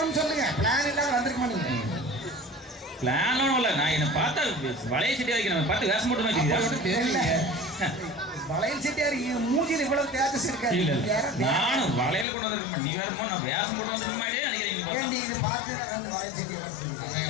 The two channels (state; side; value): drops out; right; at 12.2 s